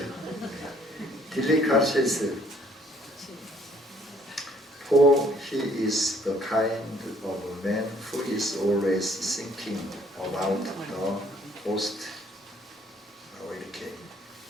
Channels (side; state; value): both; normal; correlation 0.62